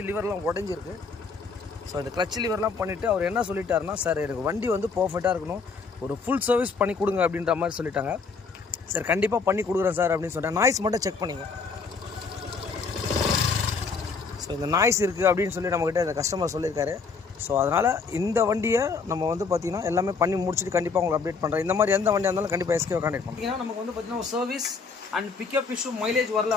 லிவர்லாம் உடஞ்சிருக்கு. ஸோ இந்த கிளச் லிவர்லாம் பண்ணிவிட்டு அவர் என்ன சொல்லிட்டாருன்னா, சார் எனக்கு வண்டி வந்து பர்ஃபெக்டாக இருக்கணும், ஒரு ஃபுல் சர்வீஸ் பண்ணி கொடுங்க அப்படின்ற மாதிரி சொல்லிட்டாங்க. சார் கண்டிப்பாக பண்ணி கொடுக்குறேன் சார் அப்படின்னு சொன்னேன். நாய்ஸ் மட்டும் செக் பண்ணிங்க. ஸோ இந்த நாய்ஸ் இருக்குது அப்படின்னு சொல்லி நம்மக்கிட்ட இந்த கஸ்டமர் சொல்லியிருக்காரு. ஸோ அதனால் இந்த வண்டியை நம்ம வந்து பார்த்திங்கன்னா எல்லாமே பண்ணி முடிச்சுட்டு கண்டிப்பாக உங்களுக்கு அப்டேட் பண்ணுறேன். இந்த மாதிரி எந்த வண்டியாக இருந்தாலும் கண்டிப்பாக எஸ்கேவை கான்டெக்ட் பண்ணுறோம். ஏன்னா நமக்கு வந்து பார்த்திங்கன்னா ஒரு service and pickup issue mileage வரல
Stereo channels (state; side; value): quieter; right; 4.8 dB